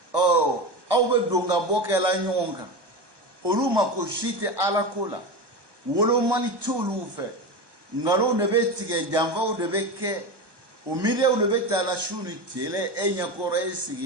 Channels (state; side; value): late; left; 1.2 ms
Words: au be donga bokela nyonga oluma ko shite ala kola wolo mani tulu fe ngalo ne be tige jamva o de be ke o mire o de be ta la shuni tele enya kore